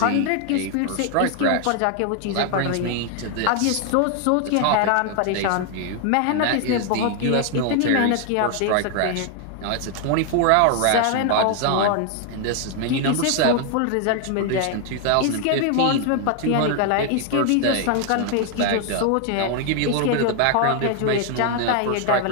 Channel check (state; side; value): different; both; correlation 0.00